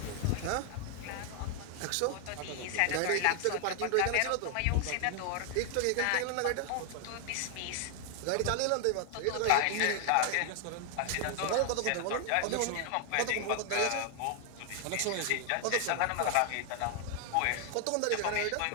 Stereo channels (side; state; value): both; different; correlation 0.00